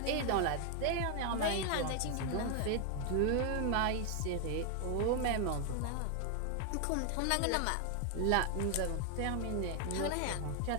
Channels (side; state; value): both; different; correlation 0.00